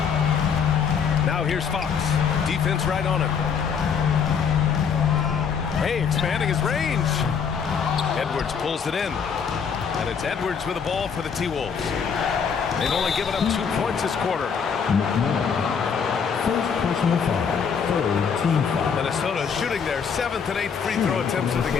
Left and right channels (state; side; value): quieter; right; 6.6 dB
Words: Now here's Fox. Defense right on him. Hey, expanding his range. Edwards pulls it in. And it's Edwards with the ball for the T-Wolves. They've only given up 2 points this quarter. McMillan. First personal foul. Third team foul. Minnesota shooting their 7th and 8th free throw attempts of the